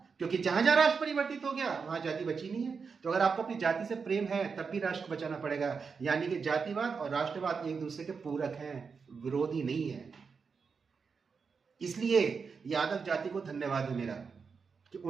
क्योंकि जहां जहां राष्ट्र परिवर्तित हो गया वहां जाति बची नहीं है। तो अगर आपको अपनी जाति से प्रेम है तब भी राष्ट्र को बचाना पड़ेगा। यानी कि जातिवाद और राष्ट्रवाद एक दूसरे के पूरक हैं, विरोधी नहीं है। इसलिए यादव जाति को धन्यवाद है मेरा कि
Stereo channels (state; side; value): quieter; left; 5.4 dB